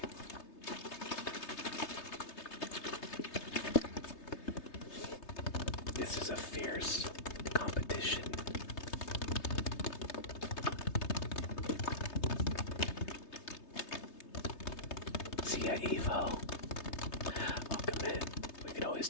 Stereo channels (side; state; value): right; late; 3.3 ms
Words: This is a fierce competition. See ya, Evo. Welcome in. We could always